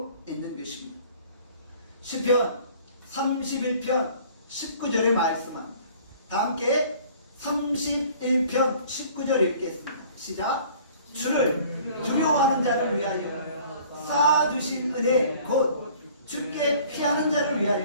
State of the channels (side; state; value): both; inverted; correlation -0.51